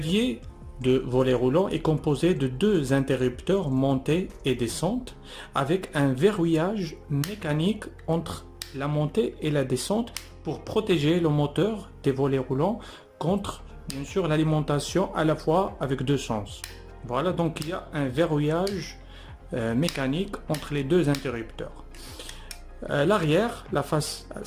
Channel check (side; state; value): both; identical; correlation 1.00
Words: de volet roulant est composé de deux interrupteurs montée et descente avec un verrouillage mécanique entre la montée et la descente pour protéger le moteur des volets roulants contre bien sûr l'alimentation à la fois avec deux sens. Voilà, donc il y a un verrouillage mécanique entre les deux interrupteurs. L'arrière, la face,